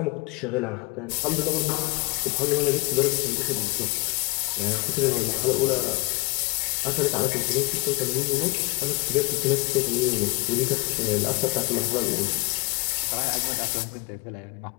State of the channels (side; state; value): right; quieter; 28.1 dB